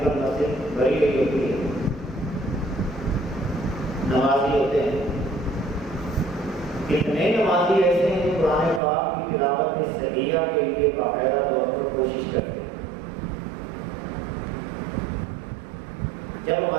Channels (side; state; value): left; drops out; at 8.8 s